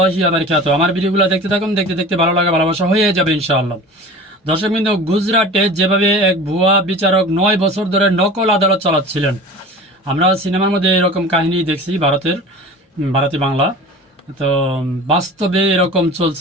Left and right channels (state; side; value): normal; both; correlation 0.38